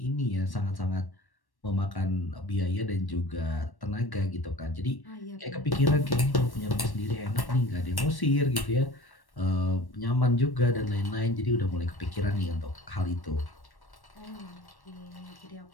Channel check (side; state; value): right; late; 1.1 ms